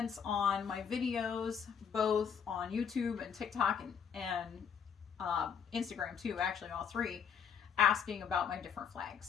on my videos, both on YouTube and TikTok and Instagram too, actually all three, asking about my different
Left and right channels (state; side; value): quieter; right; 7.2 dB